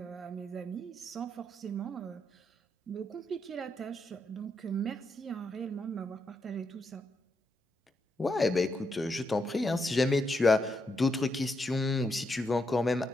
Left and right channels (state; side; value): normal; both; correlation 0.81